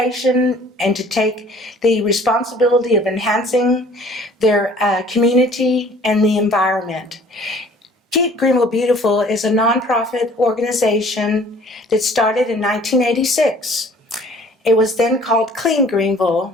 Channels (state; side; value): normal; both; correlation 0.52